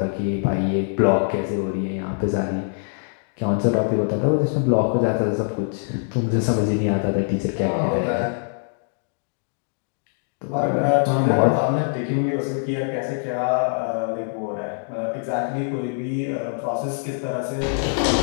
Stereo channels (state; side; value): silent; right; digital silence